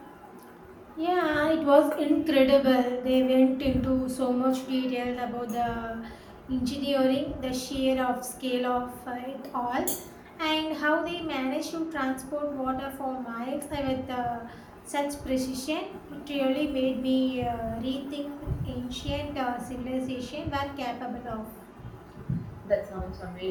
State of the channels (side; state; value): both; identical; correlation 1.00